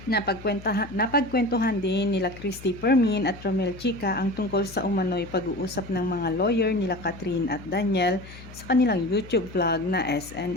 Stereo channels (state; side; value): noise; left; hum, 17 dB below the sound